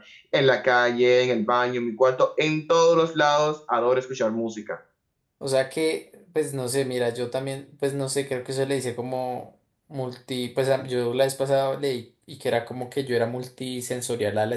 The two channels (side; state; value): both; identical; correlation 1.00